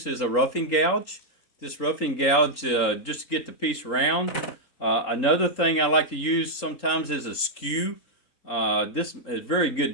is a roughing gouge. This roughing gouge just to get the piece round. Another thing I like to use sometimes is a skew. This is a very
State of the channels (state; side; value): late; right; 3.8 ms